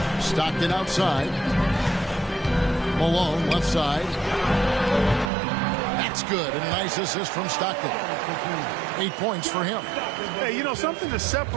Stockton outside. Malone left side. That's good. And a nice assist from Stockton. 8 points for him. Hey, you know, something that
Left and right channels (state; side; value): drops out; left; at 5.3 s